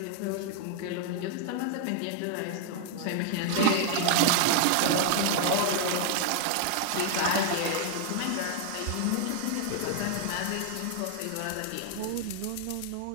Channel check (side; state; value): both; different; correlation 0.00